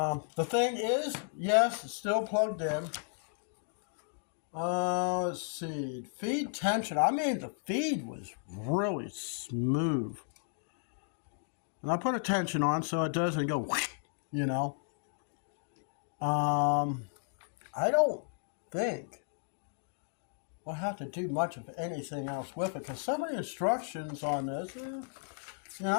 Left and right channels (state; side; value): silent; right; digital silence